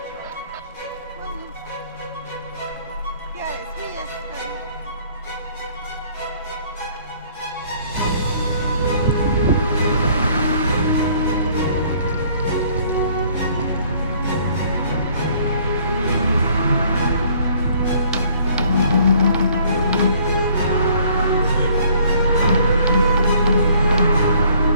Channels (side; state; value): both; inverted; correlation -0.59